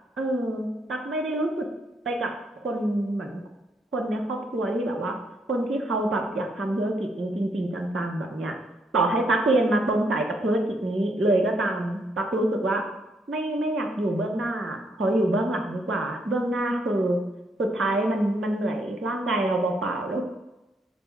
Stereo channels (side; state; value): both; normal; correlation 0.74